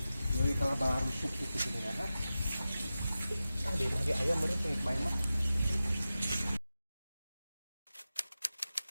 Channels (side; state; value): both; inverted; correlation -0.94